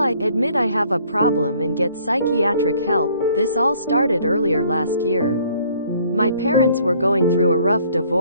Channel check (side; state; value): both; inverted; correlation -0.60